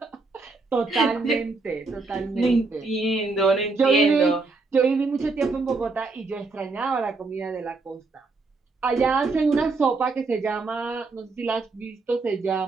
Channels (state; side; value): quieter; left; 3.8 dB